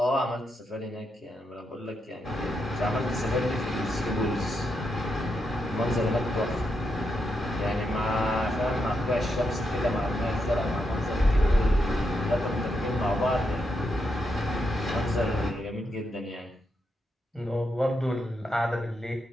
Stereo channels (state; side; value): normal; both; correlation 0.83